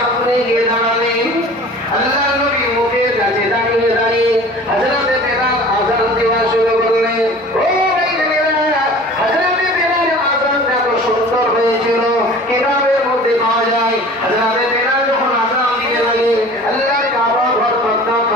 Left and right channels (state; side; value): normal; both; correlation 0.43